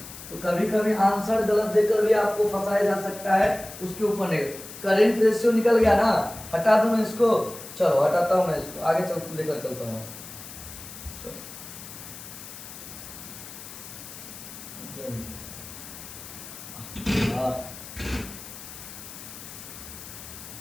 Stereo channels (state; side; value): noise; left; hiss, 13 dB below the sound